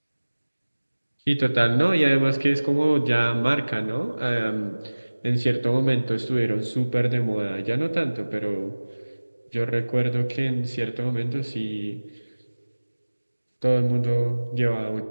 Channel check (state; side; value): inverted; both; correlation -1.00